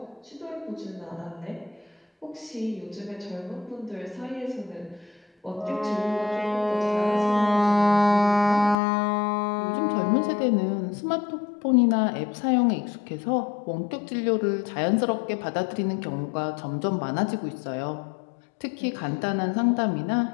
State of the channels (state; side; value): drops out; right; at 8.8 s